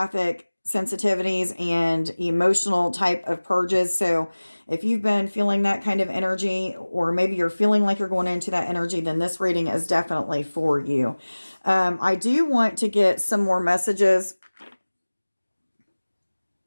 sensitivities and emotional type of purges. So if you've been feeling that kind of energy, or maybe you're feeling like you're going into that energy, then this reading is definitely for you. I do want to get some more messages.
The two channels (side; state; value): both; inverted; correlation -1.00